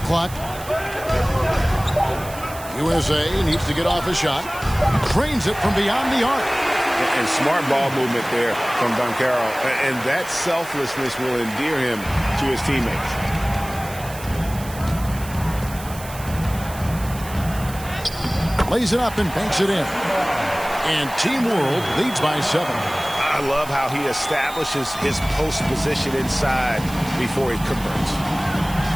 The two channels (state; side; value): noise; right; hiss, 15 dB below the sound